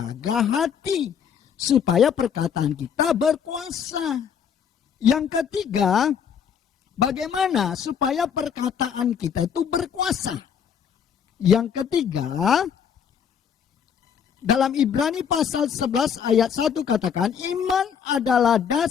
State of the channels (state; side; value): quieter; right; 7.6 dB